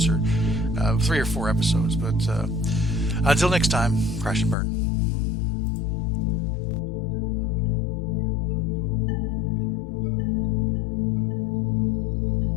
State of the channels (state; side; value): drops out; right; at 4.5 s